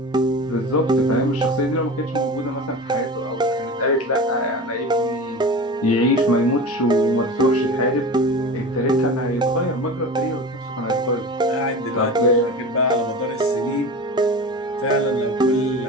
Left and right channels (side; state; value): both; normal; correlation 0.31